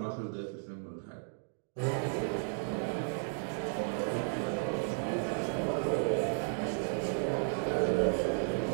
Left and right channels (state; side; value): silent; left; 55 dB below the other